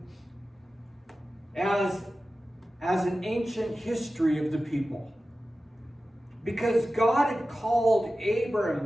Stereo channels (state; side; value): normal; both; correlation 0.94